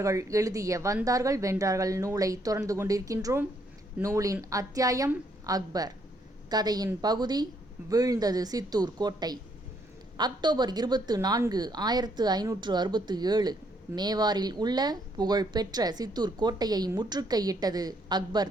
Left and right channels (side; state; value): both; normal; correlation 0.71